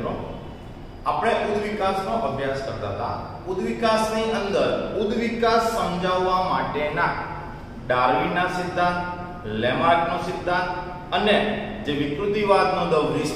આપણે ઉદ્વિકાસનો અભ્યાસ કરતા હતા. ઉદ્વિકાસની અંદર ઉદ્વિકાસ સમજાવવા માટેના ડાર્વિનના સિદ્ધાંત, લેમાર્કનો સિદ્ધાંત અને જે વિકૃતિવાદનો ધ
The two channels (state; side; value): identical; both; correlation 1.00